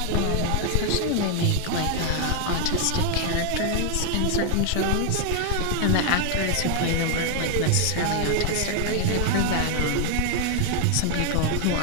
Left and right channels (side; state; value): both; different; correlation 0.00